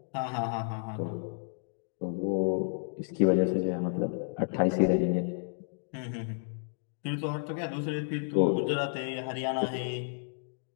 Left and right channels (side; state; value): right; silent; digital silence